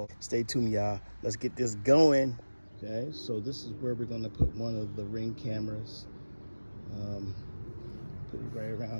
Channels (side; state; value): both; inverted; correlation -1.00